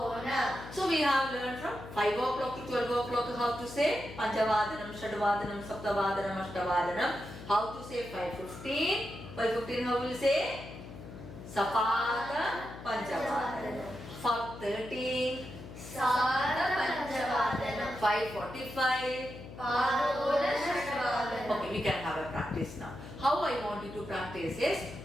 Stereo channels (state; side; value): noise; left; hum, 13 dB below the sound